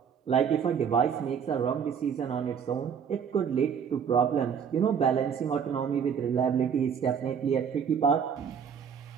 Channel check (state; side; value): quieter; left; 7.3 dB